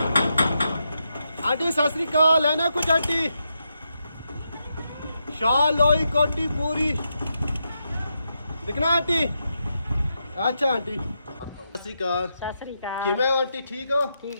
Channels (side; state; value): both; inverted; correlation -0.84